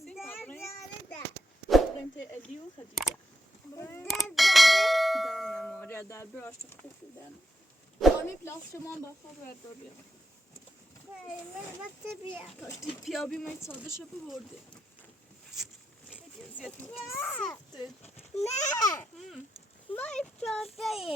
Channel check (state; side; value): normal; both; correlation 0.84